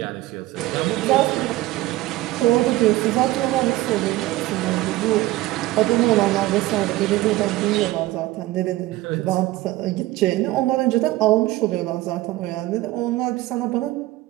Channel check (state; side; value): quieter; left; 17.5 dB